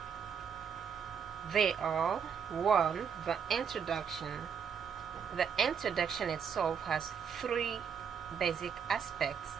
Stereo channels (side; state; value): left; quieter; 7.0 dB